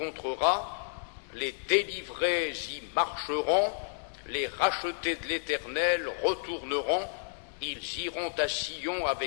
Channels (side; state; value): right; silent; 57 dB below the other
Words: les délivrés y marcheront, les rachetés de l'Éternel retourneront, ils iront à Sion